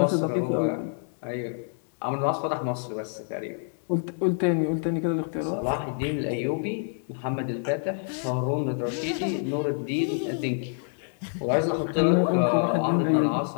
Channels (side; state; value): right; silent; 60 dB below the other